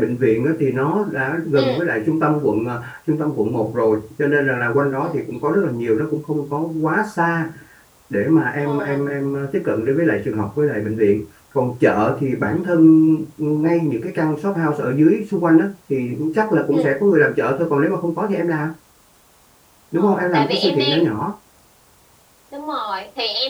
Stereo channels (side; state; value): both; identical; correlation 1.00